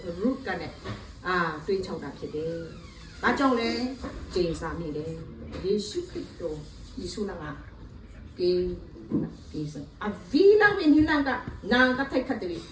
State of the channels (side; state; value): both; identical; correlation 1.00